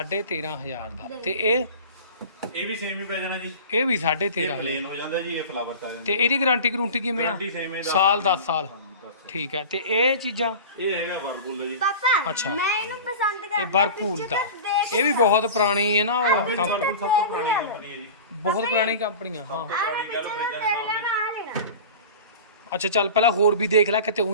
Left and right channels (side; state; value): both; inverted; correlation -0.35